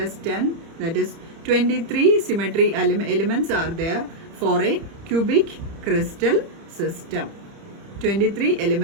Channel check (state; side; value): late; left; 30 ms